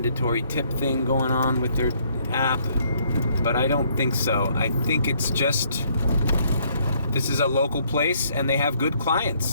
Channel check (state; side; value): inverted; both; correlation -0.67